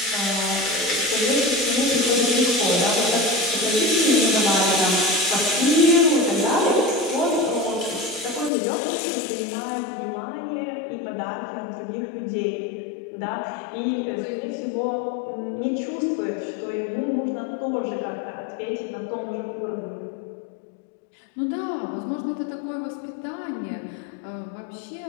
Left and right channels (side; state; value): right; drops out; at 8.5 s